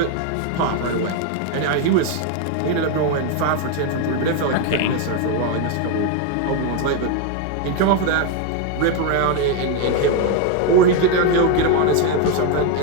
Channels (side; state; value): both; different; correlation 0.01